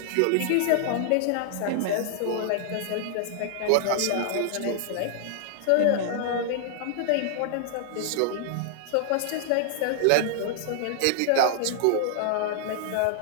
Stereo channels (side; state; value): both; different; correlation -0.01